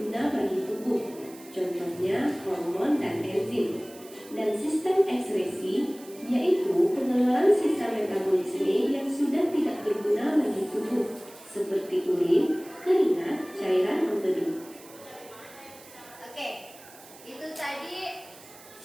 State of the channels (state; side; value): noise; right; hiss, 21 dB below the sound